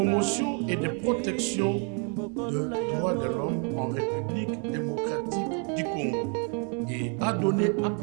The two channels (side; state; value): left; quieter; 39.1 dB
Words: et de protection des droits de l'homme en République démocratique du Congo et a donné